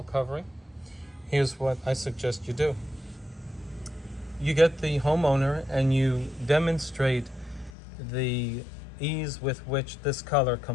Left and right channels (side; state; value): right; drops out; at 7.7 s